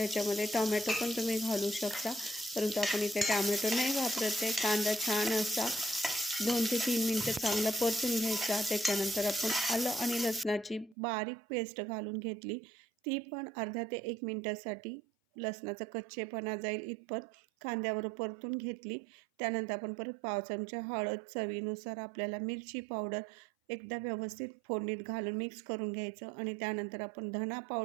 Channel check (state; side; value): drops out; left; at 11.0 s